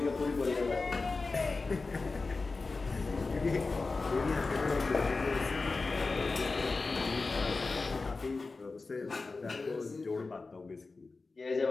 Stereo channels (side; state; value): right; quieter; 3.9 dB